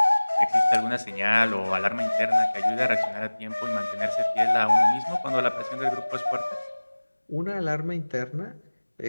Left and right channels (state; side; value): inverted; both; correlation -1.00